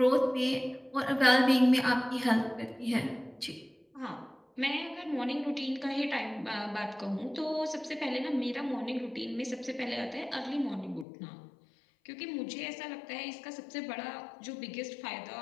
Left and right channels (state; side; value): drops out; right; at 11.1 s